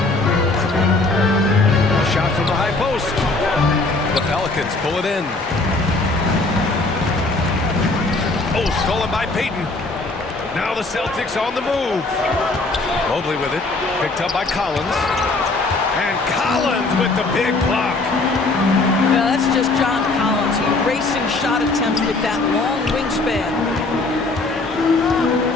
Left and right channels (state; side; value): quieter; right; 3.3 dB